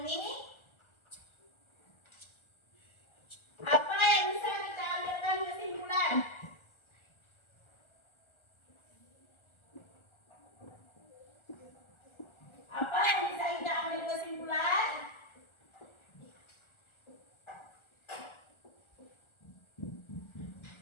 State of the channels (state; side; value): late; right; 1.4 ms